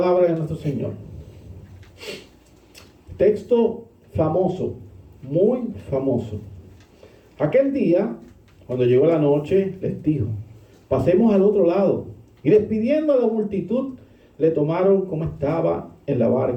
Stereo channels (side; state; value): both; identical; correlation 1.00